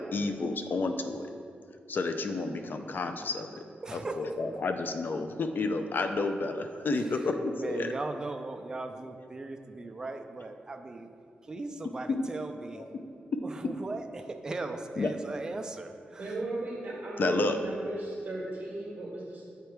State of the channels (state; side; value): normal; both; correlation 0.78